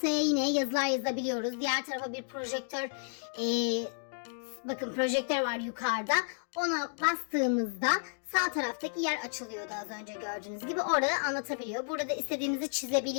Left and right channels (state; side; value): silent; right; digital silence